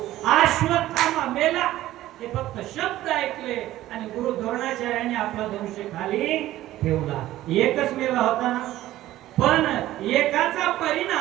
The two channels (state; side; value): quieter; left; 14.8 dB